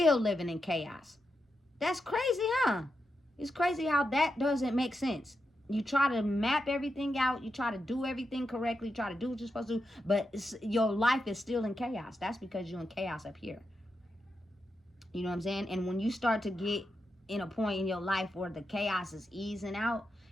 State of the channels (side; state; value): both; normal; correlation 0.86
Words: living in chaos. That's crazy, huh? It's crazy how that doesn't make sense. You try to map everything out, you try to do everything correctly, try to do what you're supposed to do, but your life is still in chaos. That's because you're in chaos up here. You know what I'm saying? And when you start to get in a point in your life where the chaos is easing out